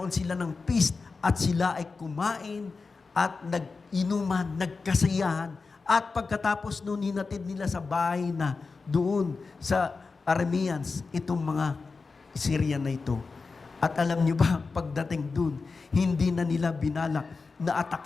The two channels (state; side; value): quieter; right; 4.3 dB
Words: sila ng feast at sila ay kumain at nag-inuman, nagkasayahan. At pagkatapos noon, hinatid nila sa bahay na doon sa Arameans, itong mga Syrian na ito. At alam niyo ba, pagdating doon, hindi na nila binalak na